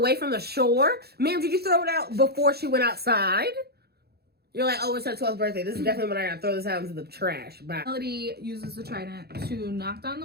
from the shore? Ma'am, did you throw it out before she went outside? You're like, oh, it's her 12th birthday. This is definitely when I gotta throw this out into the trash. Bye. Melody uses the trident to knock down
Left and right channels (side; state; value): left; late; 0.46 ms